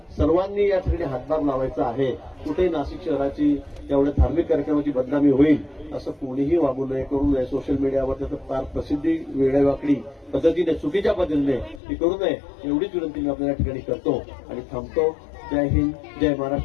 सर्वांनी या ठिकाणी हातभार लावायचा आहे. कुठेही नाशिक शहराची एवढ्या धार्मिक कार्यक्रमाची बदनामी होईल असं कोणीही वागू नये, करू नये. सोशल मीडियावर त्याचं फार प्रसिद्धी वेगळ्यावाकडी पद्धतीने, चुकीच्या पद्धतीने ती करू नये एवढीच विनंती मी आपल्या या ठिकाणी करतो आणि थांबतो. जय हिंद, जय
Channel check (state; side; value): drops out; right; at 11.8 s